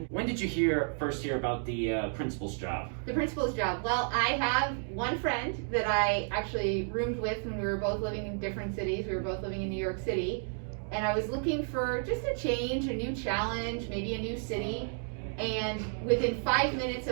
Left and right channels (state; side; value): silent; left; 57 dB below the other